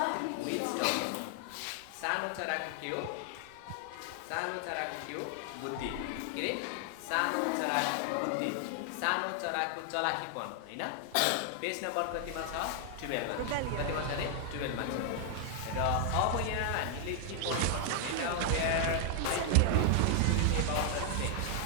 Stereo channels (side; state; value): both; different; correlation 0.00